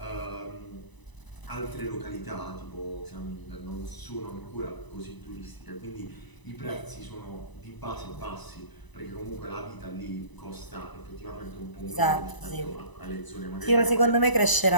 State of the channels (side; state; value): right; late; 1.0 ms